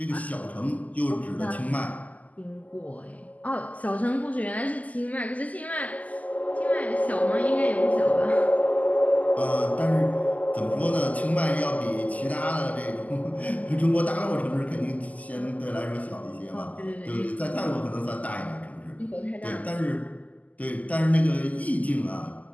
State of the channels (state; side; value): late; right; 0.076 ms